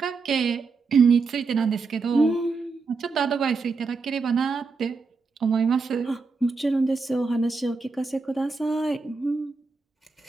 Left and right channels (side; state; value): left; quieter; 4.4 dB